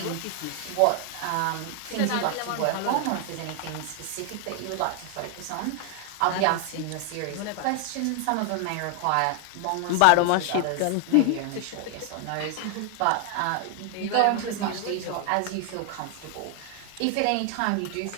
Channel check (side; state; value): both; different; correlation 0.01